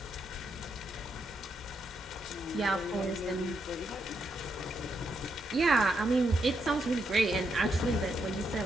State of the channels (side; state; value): both; normal; correlation 0.80